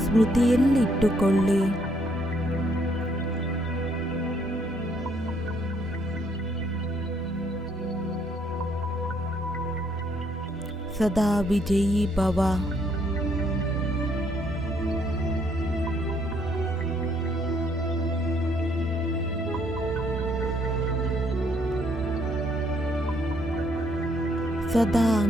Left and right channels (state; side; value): normal; both; correlation 0.69